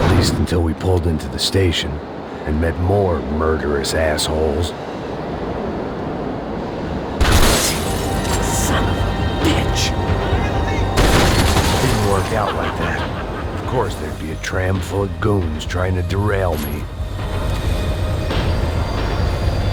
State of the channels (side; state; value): both; identical; correlation 1.00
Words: least until we pulled into the station and met more murderous assholes. Son of a bitch! Didn't work out like that. Of course there'd be a tram full of goons trying to derail me.